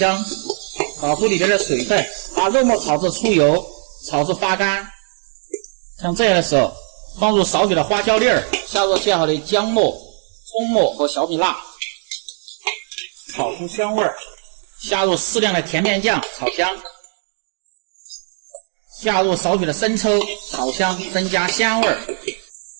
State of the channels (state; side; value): silent; left; 58 dB below the other